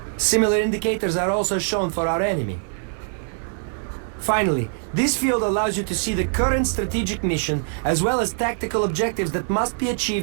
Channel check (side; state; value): left; silent; 63 dB below the other